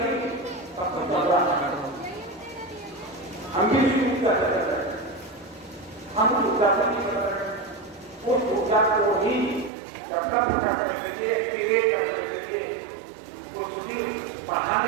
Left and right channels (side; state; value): left; drops out; at 9.7 s